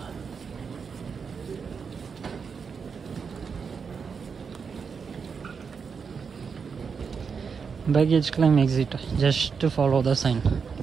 Baggage claim exit, just follow the sign.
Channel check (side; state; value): left; quieter; 5.9 dB